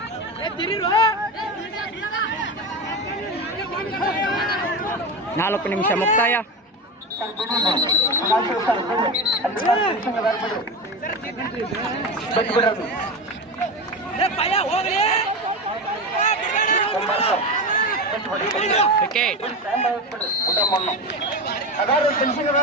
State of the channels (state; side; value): normal; both; correlation 0.21